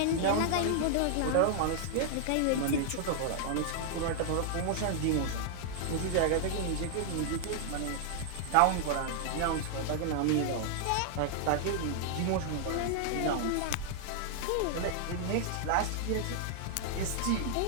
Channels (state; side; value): different; both; correlation 0.00